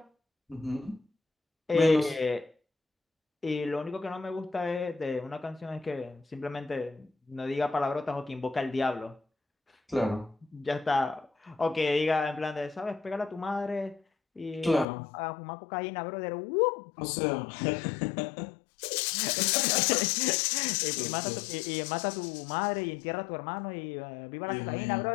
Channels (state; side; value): drops out; right; at 14.9 s